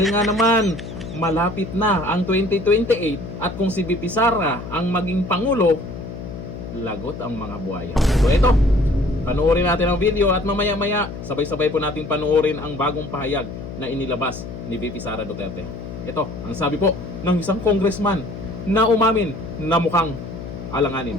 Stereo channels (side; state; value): left; noise; hum, 10 dB below the sound